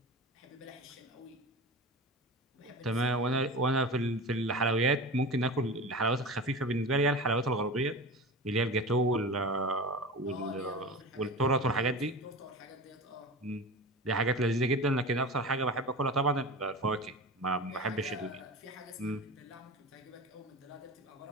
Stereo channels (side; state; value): both; normal; correlation 0.31